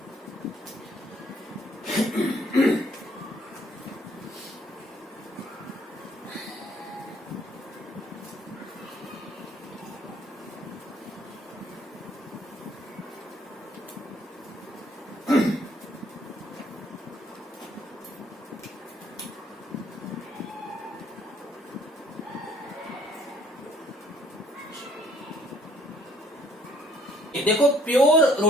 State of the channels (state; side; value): normal; both; correlation 0.62